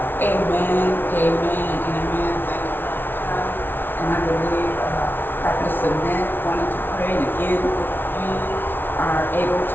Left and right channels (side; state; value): right; late; 0.10 ms